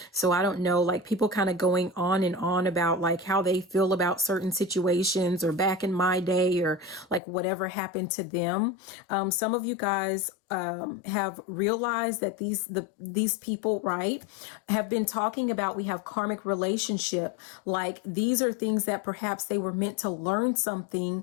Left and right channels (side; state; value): right; drops out; at 7.2 s